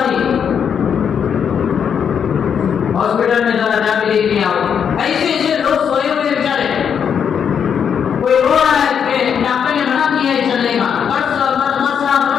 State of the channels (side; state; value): right; quieter; 7.6 dB